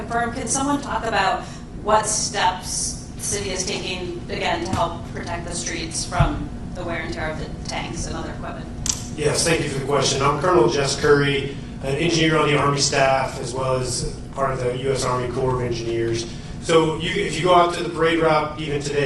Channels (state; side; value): identical; both; correlation 1.00